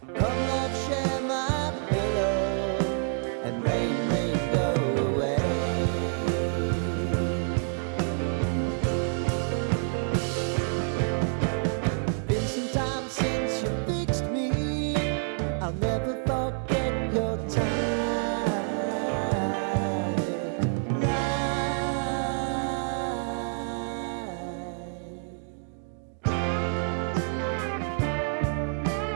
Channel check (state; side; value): silent; left; 58 dB below the other